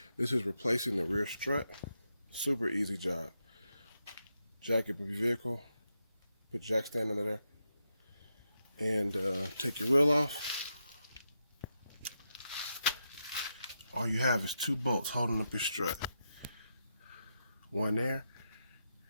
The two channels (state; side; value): inverted; both; correlation -0.85